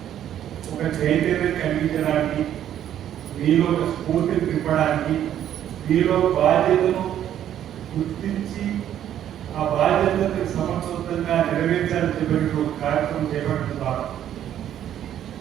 ఒక చైతన్యం కలిగించడానికి మీలో ఒక స్ఫూర్తిని నింపడానికి మీలో బాధ్యతను గుర్తించి ఆ బాధ్యతను సమర్థవంతంగా నెరవేర్చాలని చెప్పినట్టు ఒక కార్యక్రమం చేపట్టడం ద్వారా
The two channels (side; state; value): left; quieter; 10.8 dB